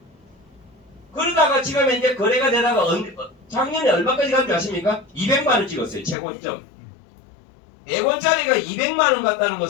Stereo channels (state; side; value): drops out; right; at 6.2 s